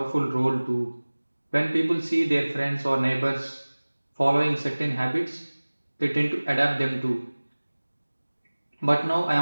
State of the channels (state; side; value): inverted; both; correlation -1.00